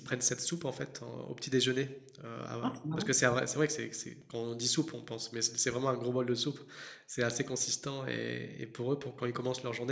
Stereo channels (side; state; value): both; identical; correlation 1.00